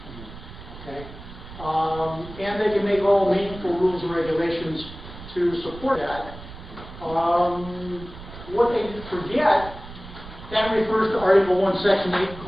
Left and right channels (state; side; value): noise; right; rumble, 15 dB below the sound